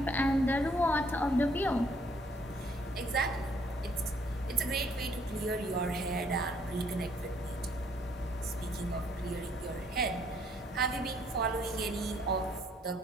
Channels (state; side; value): normal; both; correlation 0.65